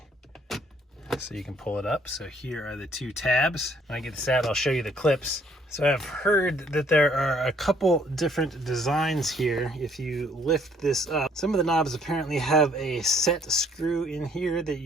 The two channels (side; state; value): both; normal; correlation 0.63